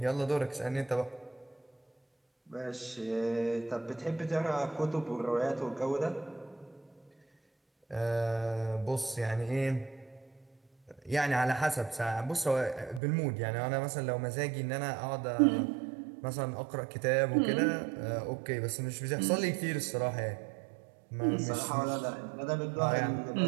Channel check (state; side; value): drops out; left; at 13.0 s